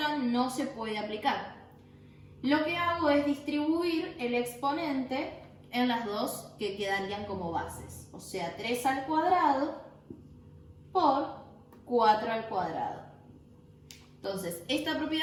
no se puede aplicar. Lo que hago es distribuir el exponente en las dos que quedarían como bases. O sea, 3 al cuadrado por 4 al cuadrado. Entonces, esta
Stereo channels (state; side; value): identical; both; correlation 1.00